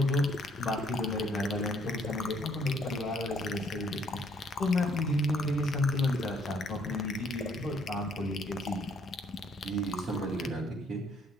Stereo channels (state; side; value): normal; both; correlation 0.66